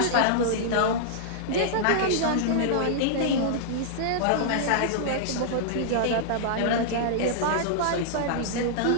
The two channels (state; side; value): different; both; correlation -0.02